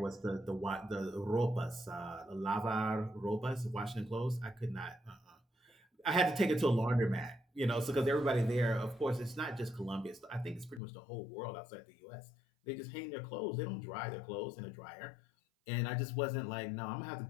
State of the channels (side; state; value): right; drops out; at 10.8 s